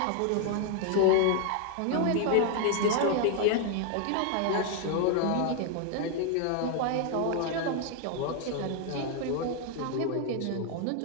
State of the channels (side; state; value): both; different; correlation 0.00